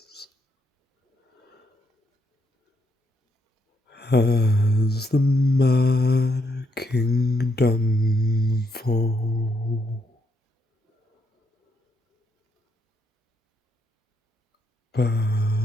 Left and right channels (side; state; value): both; normal; correlation 0.76